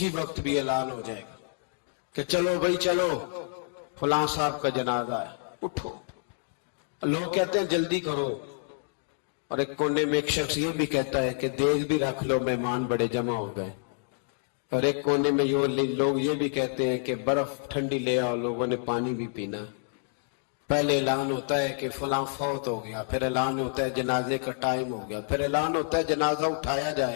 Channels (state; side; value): silent; right; digital silence